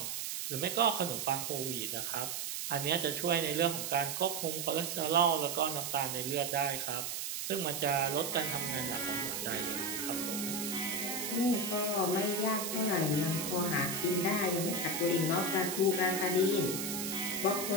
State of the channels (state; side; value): noise; right; hiss, 4 dB below the sound